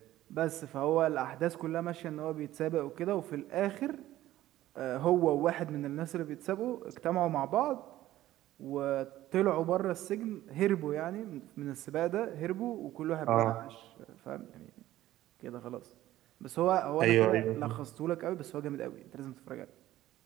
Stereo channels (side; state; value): left; quieter; 14.6 dB